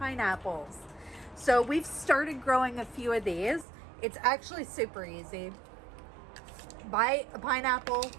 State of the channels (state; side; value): drops out; left; at 3.7 s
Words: So we've started growing a few of these. It's actually super easy. Buy a pineapple